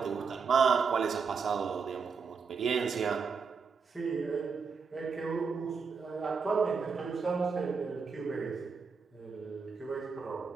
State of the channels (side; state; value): left; quieter; 5.4 dB